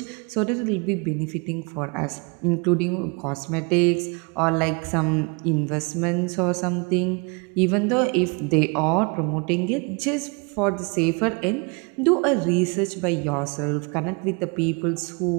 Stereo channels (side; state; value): left; quieter; 31.9 dB